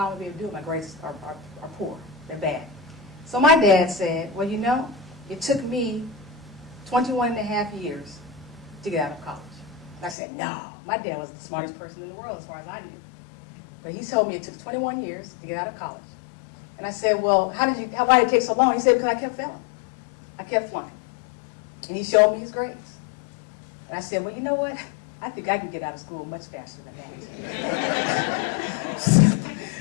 I'm going to be able to do it. My grades are poor. They're bad. So my dad said, well, you know, it took me 21 and a half years to get out of college. And I said, no. My dad was the smartest person in the world as far as I knew. But he told me it took 21 years to get out of college. And I said, well, why did it take so long? He said, because I kept failing. I kept flunking. And he showed me his grades. And I said, well, you know what? I think I can get out of school much faster than that.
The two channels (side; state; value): right; drops out; at 10.2 s